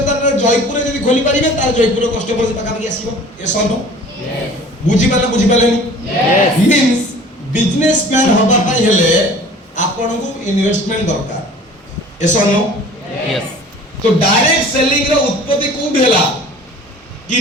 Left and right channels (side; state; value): both; normal; correlation 0.46